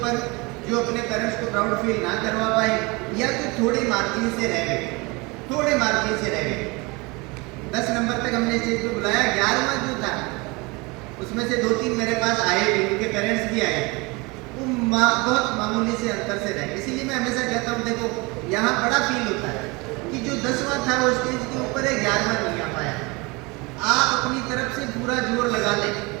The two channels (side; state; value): left; quieter; 26.1 dB